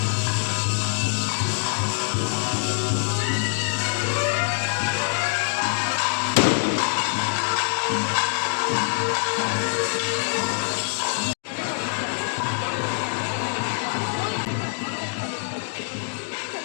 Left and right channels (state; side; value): silent; right; 57 dB below the other